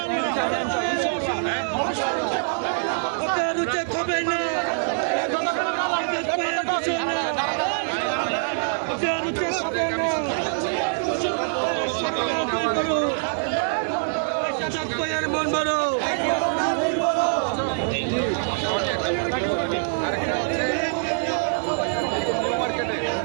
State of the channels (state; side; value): silent; left; digital silence